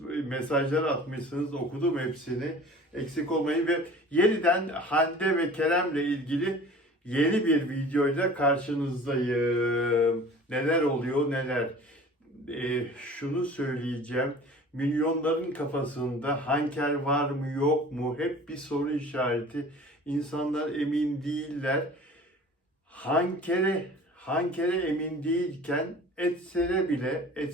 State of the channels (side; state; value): both; normal; correlation 0.44